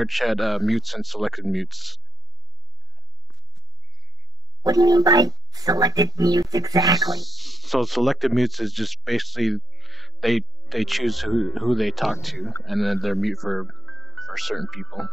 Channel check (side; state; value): both; normal; correlation 0.74